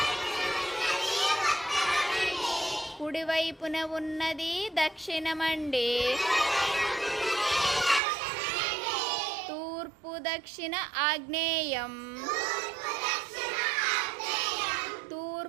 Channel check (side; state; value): left; drops out; at 8.0 s